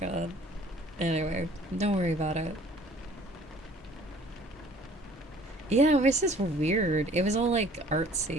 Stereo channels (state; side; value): normal; both; correlation 0.53